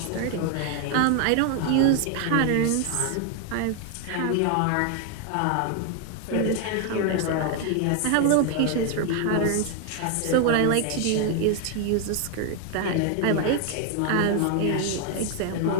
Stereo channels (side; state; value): both; different; correlation 0.00